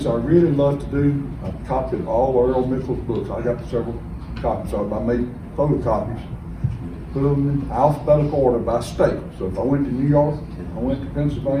I really love to do, I've copied all Earl Mickle's books. I got several copies of them. I made photocopies, put them in alphabetical order by state. So if I went to New York, I went to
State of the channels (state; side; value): identical; both; correlation 1.00